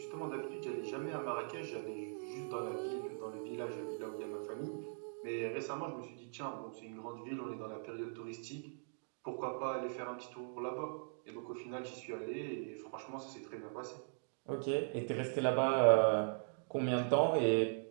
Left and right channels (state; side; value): silent; left; digital silence